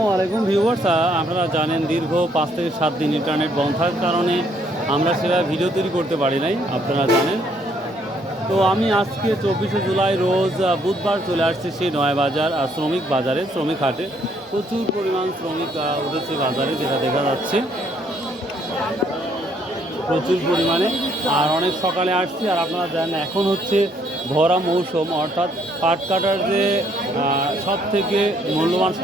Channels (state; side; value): normal; both; correlation 0.68